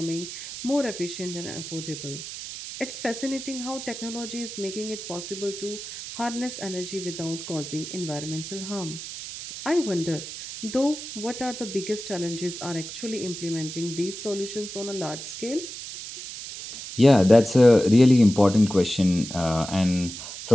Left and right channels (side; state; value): right; noise; hiss, 10 dB below the sound